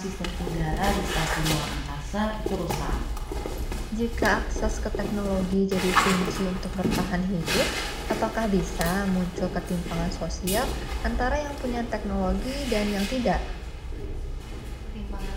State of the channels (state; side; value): identical; both; correlation 1.00